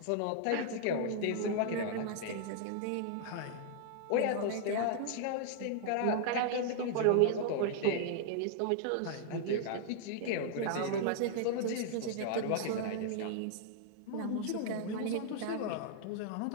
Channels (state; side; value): different; both; correlation -0.01